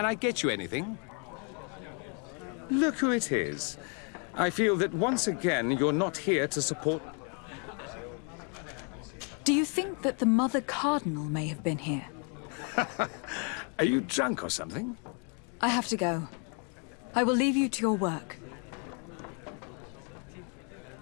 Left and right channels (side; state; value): right; quieter; 38.4 dB